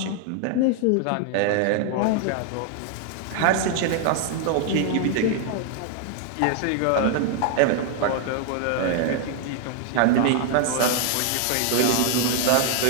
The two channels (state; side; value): different; both; correlation 0.00